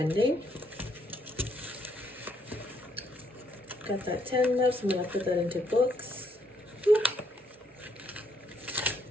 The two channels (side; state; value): both; normal; correlation 0.72